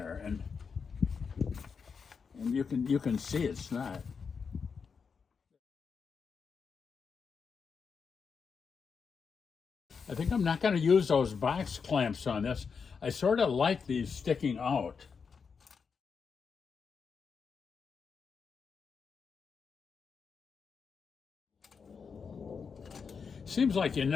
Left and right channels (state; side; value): quieter; right; 5.8 dB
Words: and you can see it's not. I think I'm not going to use those box clamps on this. I sort of like these sticking out. Seems like you